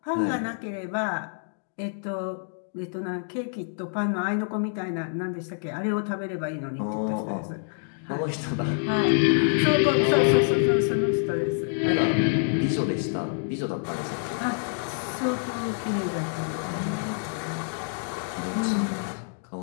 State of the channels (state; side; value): silent; right; digital silence